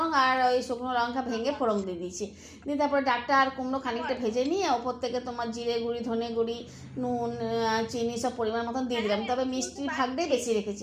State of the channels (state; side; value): identical; both; correlation 1.00